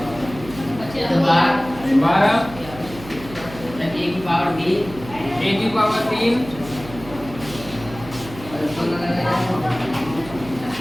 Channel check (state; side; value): noise; right; hum, 15 dB below the sound